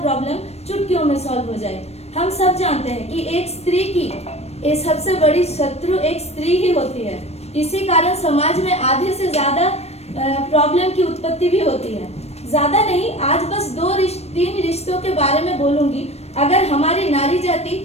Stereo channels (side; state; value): right; late; 0.31 ms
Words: प्रॉब्लम चुटकियों में सॉल्व हो जाए। हम सब जानते हैं कि एक स्त्री की सबसे बड़ी शत्रु एक स्त्री ही होती है। इसी कारण समाज में आधे से ज्यादा प्रॉब्लम की उत्पत्ति भी होती है। ज्यादा नहीं, आज बस तीन रिश्तों के बारे में बोलूंगी। अगर हमारी नारी जाति